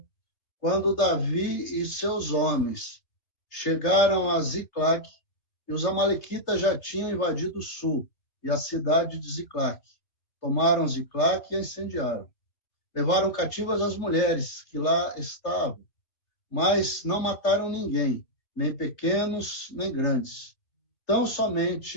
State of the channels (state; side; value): late; right; 3.1 ms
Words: quando Davi e seus homens chegaram a Ziclague, e os amalequitas já tinham invadido o sul e a cidade de Ziclague, tomaram Ziclague e a incendiaram. Levaram cativas as mulheres que lá estavam, mas não mataram ninguém, nem pequenos, nem grandes. Tão